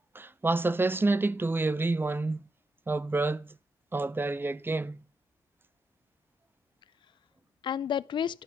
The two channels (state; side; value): normal; both; correlation 0.83